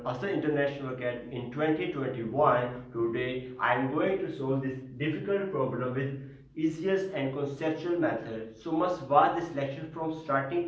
Asa International Academy in 2021. Today I am going to solve this difficult problem with easiest and conceptual method. So must watch this lecture from starting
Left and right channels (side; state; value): both; identical; correlation 1.00